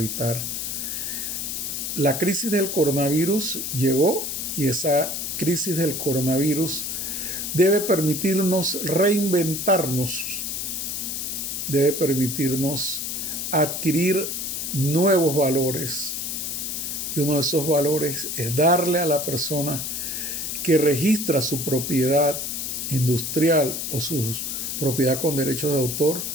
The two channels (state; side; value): noise; left; hiss, 3 dB below the sound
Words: La crisis del coronavirus llegó, y esa crisis del coronavirus debe permitirnos reinventarnos, debe permitirnos adquirir nuevos valores. Y uno de esos valores es darle a la persona que registra su propiedad industrial o su propiedad con derechos de autor